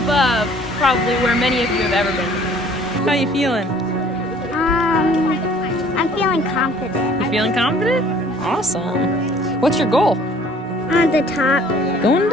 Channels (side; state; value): both; normal; correlation 0.55